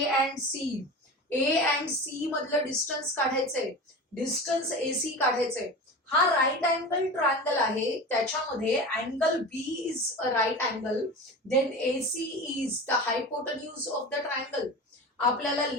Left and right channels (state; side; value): normal; both; correlation 0.31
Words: and C? A and C मधलं डिस्टन्स काढायचंय, डिस्टन्स AC काढायचंय. हा राईट अँगल ट्रायंगल आहे, त्याच्यामध्ये angle B is a right angle, then AC is the hypotenuse of the triangle. आपल्याला